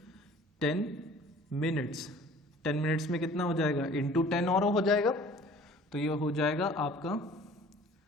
10 minutes, 10 minutes में कितना हो जाएगा इंटू 10 और हो जाएगा, तो ये हो जाएगा आपका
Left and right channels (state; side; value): normal; both; correlation 0.49